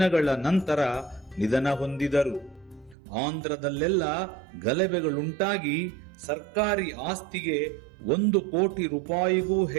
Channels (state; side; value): drops out; left; at 3.0 s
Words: ನಂತರ ನಿಧನ ಹೊಂದಿದರು. ಆಂಧ್ರದಲ್ಲೆಲ್ಲ ಗಲಭೆಗಳುಂಟಾಗಿ ಸರ್ಕಾರಿ ಆಸ್ತಿಗೆ 1 ಕೋಟಿ ರೂಪಾಯಿಗೂ